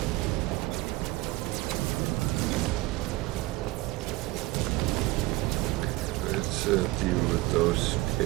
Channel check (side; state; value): left; quieter; 20.2 dB